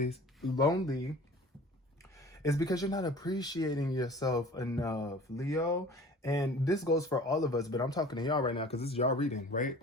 it's because you're not appreciating yourself enough, Leo. And this goes for all of us, but I'm talking to y'all right now because this is y'all reading, right?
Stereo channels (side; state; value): both; normal; correlation 0.45